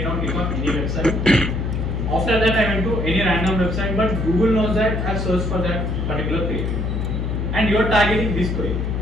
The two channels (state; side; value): noise; left; hum, 1 dB below the sound